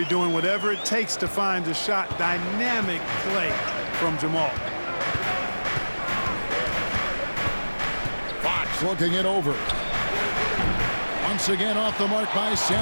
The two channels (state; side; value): inverted; both; correlation -1.00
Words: doing whatever it takes to find the shot. Dynamic play from Jamal. Fox looking it over. Once again off the mark by